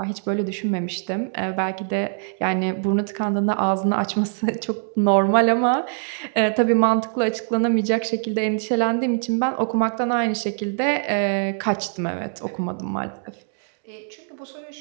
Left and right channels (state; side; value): silent; left; 56 dB below the other